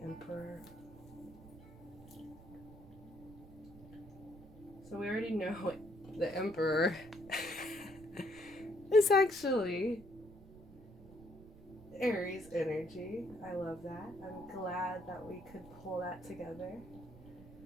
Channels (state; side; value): noise; right; rumble, 19 dB below the sound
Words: So we already know the Emperor is actually Aries energy. I love that. I'm glad that we could pull that together.